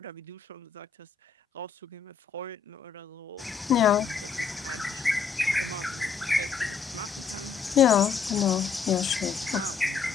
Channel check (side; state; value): right; quieter; 5.9 dB